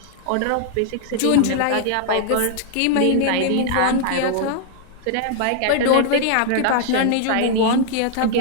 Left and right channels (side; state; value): both; different; correlation 0.00